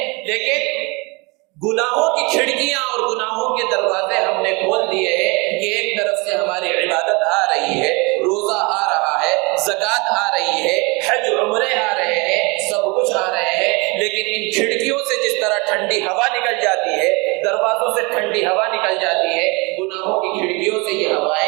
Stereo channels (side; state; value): left; quieter; 28.0 dB